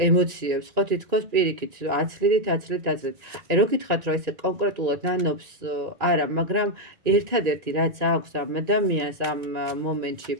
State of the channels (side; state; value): left; late; 2.5 ms